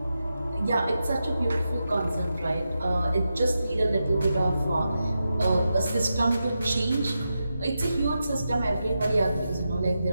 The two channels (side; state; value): both; inverted; correlation -0.89